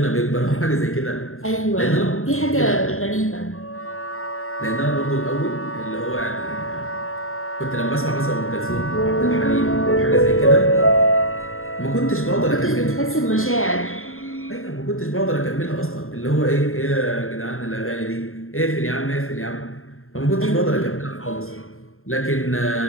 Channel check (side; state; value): right; late; 0.61 ms